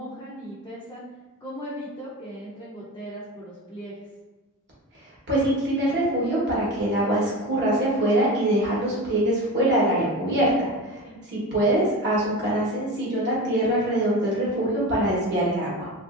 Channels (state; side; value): normal; both; correlation 0.28